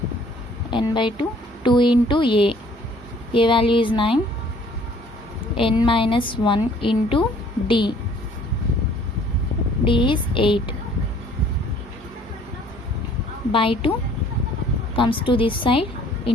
n by 2, 2 into a value is 9, n minus 1 into d is 8, by 2 comes to this side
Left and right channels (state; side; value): normal; both; correlation 0.57